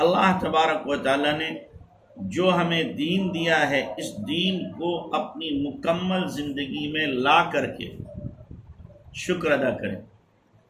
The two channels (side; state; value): both; identical; correlation 1.00